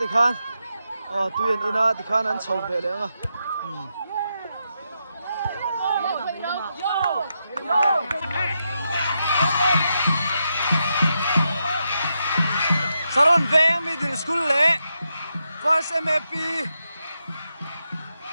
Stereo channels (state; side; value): inverted; both; correlation -0.84